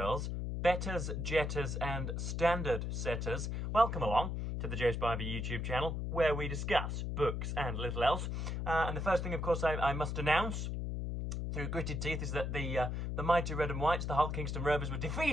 betters, jetters and standard setters, welcome along to the Joe Spivey YouTube channel where we discuss books and little else. And the first thing, of course, I must announce through gritted teeth is that the mighty Red and Whites, the Hull Kingston Rovers, were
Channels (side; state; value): left; noise; hum, 2 dB below the sound